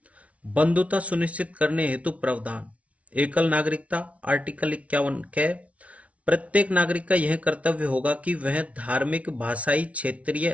बंधुता सुनिश्चित करने हेतु प्रावधान: एकल नागरिकता, आर्टिकल 51 के प्रत्येक नागरिक का यह कर्तव्य होगा कि वह धार्मिक, भाषाई, क्षेत्रीय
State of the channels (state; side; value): late; left; 0.065 ms